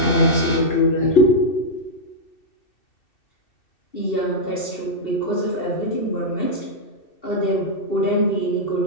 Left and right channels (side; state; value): right; late; 2.7 ms